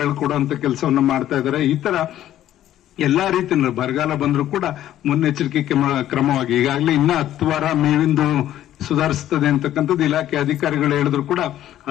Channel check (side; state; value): right; quieter; 12.5 dB